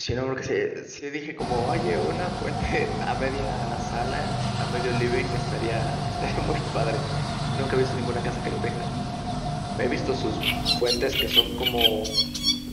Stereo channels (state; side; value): identical; both; correlation 1.00